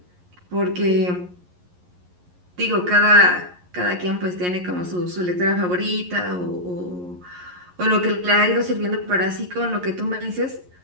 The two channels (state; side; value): late; left; 11 ms